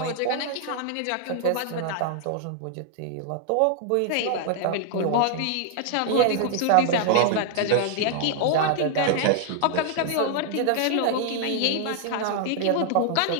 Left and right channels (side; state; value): both; different; correlation 0.00